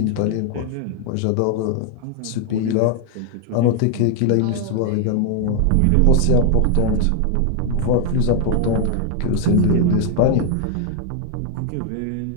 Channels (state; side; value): different; both; correlation 0.00